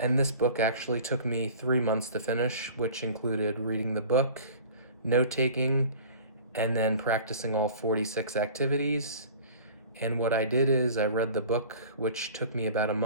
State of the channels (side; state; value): both; inverted; correlation -0.43